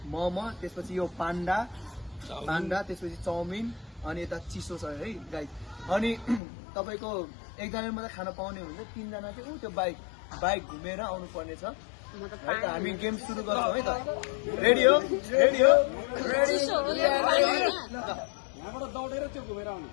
मोमो, त्यसपछि यो पान्डा, त्यसपछि चाउमिन, अनि यता चिसो छ है गाइस। अनि तपाईँको एकजनाले मात्रै खान पाउने हुन्छ, 3 जना चाहिँ त्यो बाइक घुमेर आउनु पर्ने छ है त। हामी गेम सुरु गर्छौँ है त। रेडी हो? रेडी हो? रेडी यहाँबाट दौडेर त्यो घुमेर आउनु।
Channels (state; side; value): drops out; right; at 6.4 s